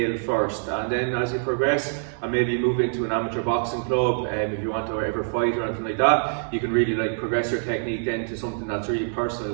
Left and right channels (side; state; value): left; silent; digital silence